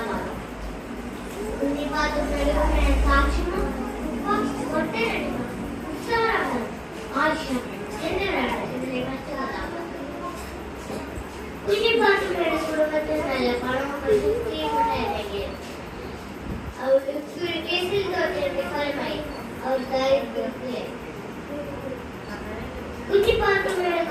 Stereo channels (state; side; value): identical; both; correlation 1.00